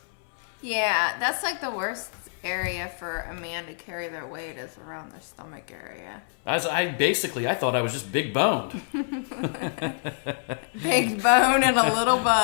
Yeah, that's like the worst area for a man to carry their weight is around their stomach area. I thought I was just big boned. Big bone and a little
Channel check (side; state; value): right; silent; 60 dB below the other